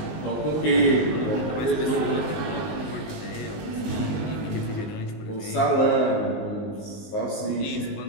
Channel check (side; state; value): right; late; 19 ms